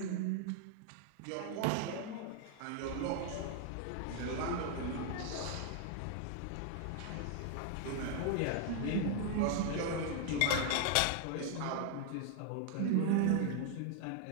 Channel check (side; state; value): both; different; correlation 0.00